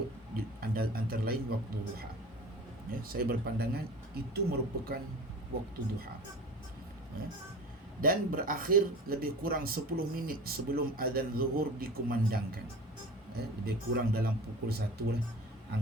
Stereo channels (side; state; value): both; normal; correlation 0.37